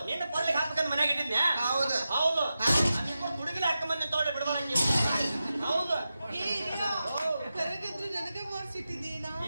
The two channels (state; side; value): inverted; both; correlation -0.91